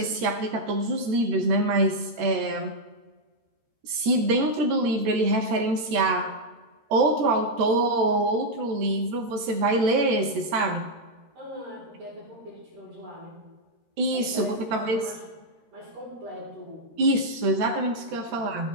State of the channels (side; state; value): left; late; 13 ms